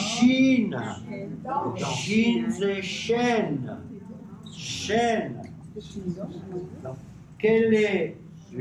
Shin, c'est chaîne. Chaîne. Quel est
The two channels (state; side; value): identical; both; correlation 1.00